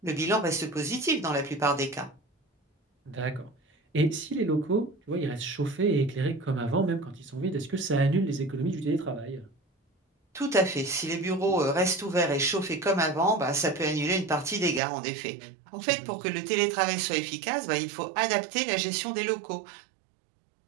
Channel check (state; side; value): drops out; left; at 14.8 s